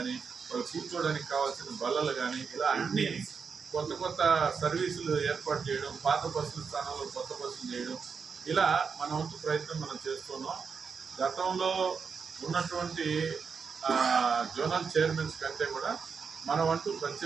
వాళ్ళు కూర్చోవడానికి కావాల్సిన బల్లలు కానీ, ఇలా అన్ని కొత్త కొత్త సర్వీసులు ఏర్పాటు చేయడం, పాత బస్సుల స్థానంలో కొత్త బస్సులు చేయడం, ఇలా మన వంతు ప్రయత్నం మనం చేస్తున్నాం. గతంలో ఉన్నటువంటి జోనల్ చైర్మన్స్ కంటే కూడా మన వంతు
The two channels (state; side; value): quieter; left; 5.8 dB